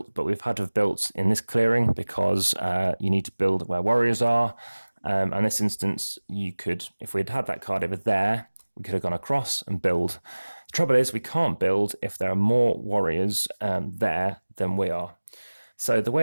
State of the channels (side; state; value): both; inverted; correlation -1.00